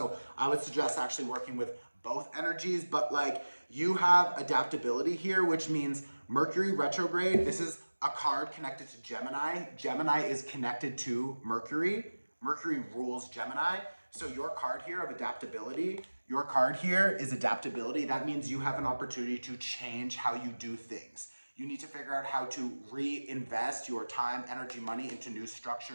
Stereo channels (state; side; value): inverted; both; correlation -1.00